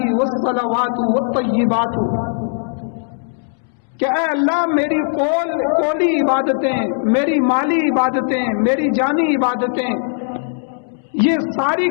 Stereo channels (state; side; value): silent; right; 67 dB below the other